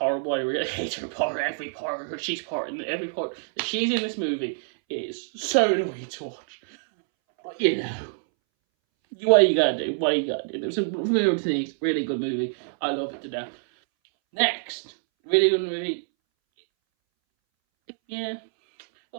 I really hate her part. Every part that she's in this movie is so annoying to watch. But what you gotta do? There's some weird things. Really good movie. I love it to death. Next, really good movie. Yeah.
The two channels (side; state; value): left; silent; 61 dB below the other